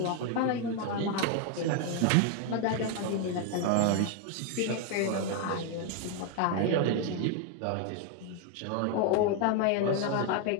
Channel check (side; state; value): both; different; correlation 0.01